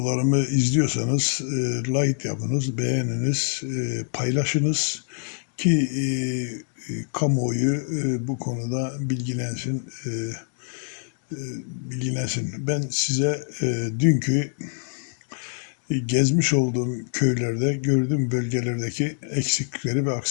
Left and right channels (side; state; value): right; silent; digital silence